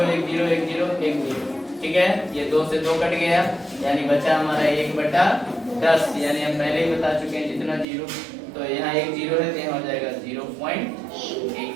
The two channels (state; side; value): drops out; left; at 7.9 s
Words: 1 0 1 0 1 0। ठीक है, ये 2 से 2 कट गया, यानी बचा हमारा 1 बटा 10। यानी हम पहले ही बता चुके हैं जितना 0, तो यहाँ 1 0 है तो यहाँ हो जाएगा 0.8।